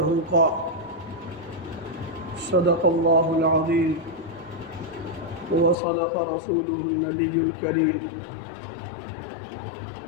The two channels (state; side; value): drops out; right; at 5.8 s